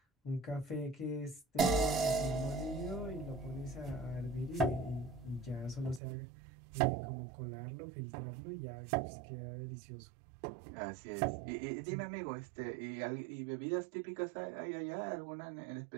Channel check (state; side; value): drops out; left; at 6.0 s